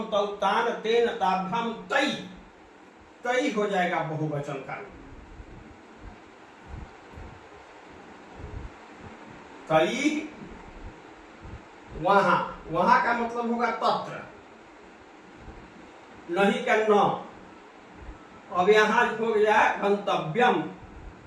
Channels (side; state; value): both; identical; correlation 1.00